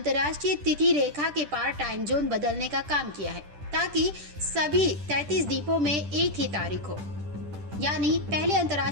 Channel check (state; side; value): late; left; 10 ms